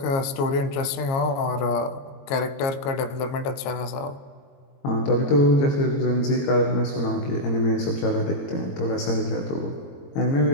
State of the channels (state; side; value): late; right; 22 ms